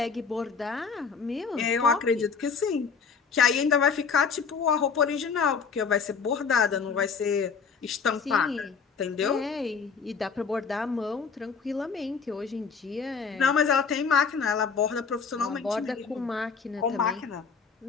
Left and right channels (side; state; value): right; quieter; 5.7 dB